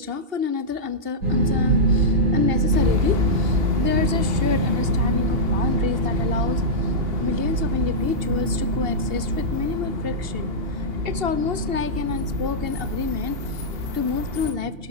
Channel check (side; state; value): left; late; 2.8 ms